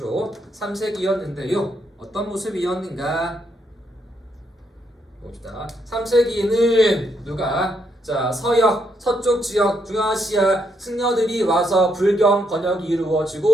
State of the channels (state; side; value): normal; both; correlation 0.76